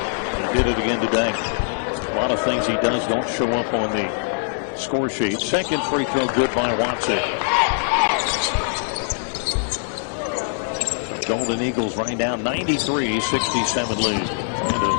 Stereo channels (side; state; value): right; silent; 64 dB below the other